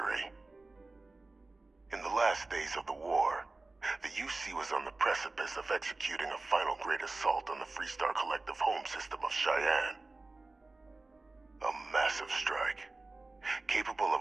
In the last days of the war, the UC was on the precipice of executing a final great assault on the Freestar Collective home system of Cheyenne. A massive strike, capable of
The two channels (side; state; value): left; quieter; 3.3 dB